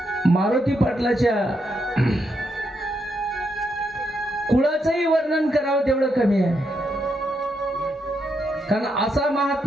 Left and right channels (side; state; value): both; normal; correlation 0.80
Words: मारुती पाटलाच्या कुळाचंही वर्णन करावं तेवढं कमी आहे. कारण असा